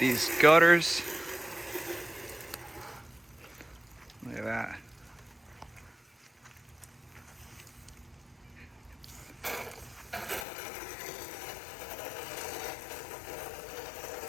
gutters. Look at that.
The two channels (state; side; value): drops out; right; at 10.5 s